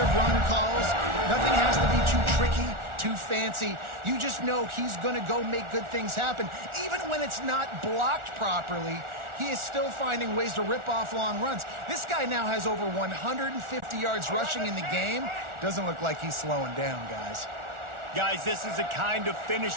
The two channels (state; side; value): late; left; 1.4 ms